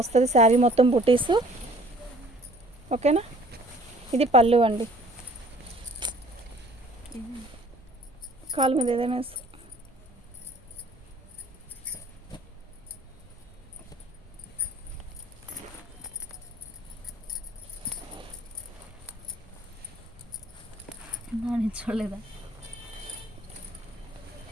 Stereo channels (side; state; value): both; normal; correlation 0.55